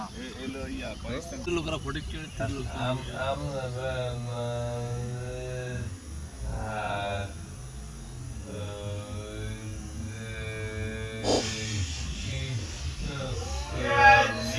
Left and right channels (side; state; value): both; identical; correlation 1.00